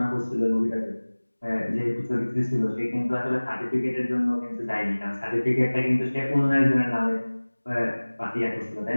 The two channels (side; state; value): both; inverted; correlation -1.00